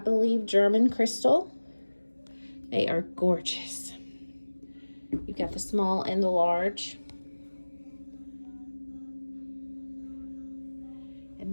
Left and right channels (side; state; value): both; inverted; correlation -1.00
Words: German crystal. They are gorgeous. You've got the small and the large.